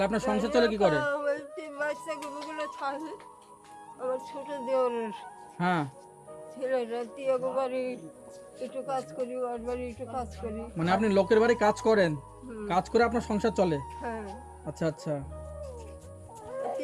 আপনার সংসার চলে কি করে? আমার তিন বাচ্চাগুলো থাকে আমার ছোট দেওরের হ্যাঁ ছেলেরা তিয়াগো বাড়ি একটু কাজ করি, ওর বাড়ি একটু কাজ করি। মানে আপনি লোকের বাড়ি কাজ করেন, হুম। কাজ করে আপনার সংসার চলে? হ্যাঁ। আচ্ছা আচ্ছা।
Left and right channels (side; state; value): both; identical; correlation 1.00